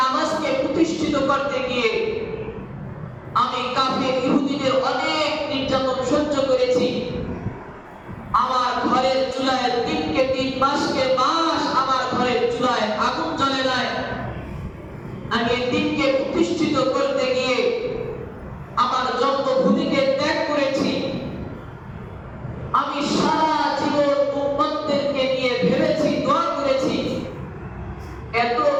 প্রতিষ্ঠিত করতে গিয়ে আমি কাফের ইহুদিদের অনেক নির্যাতন সহ্য করেছি। আমার ঘরের চুলায় দিনকে দিন, মাসকে মাস আমার ঘরের চুলায় আগুন জ্বলে নাই। আমি দিনকে প্রতিষ্ঠিত করতে গিয়ে আমার জন্মভূমিকে ত্যাগ করেছি। আমি সারা জীবন উম্মতদেরকে নিয়ে ভেবেছি, দোয়া করেছি। এত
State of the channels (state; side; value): identical; both; correlation 1.00